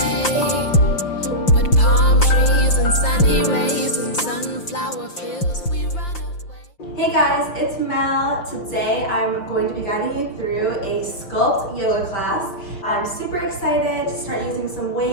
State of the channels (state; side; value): late; right; 5.8 ms